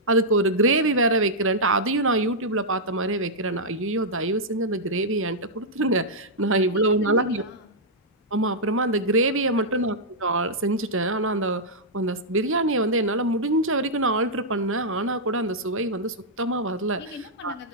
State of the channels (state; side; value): normal; both; correlation -0.08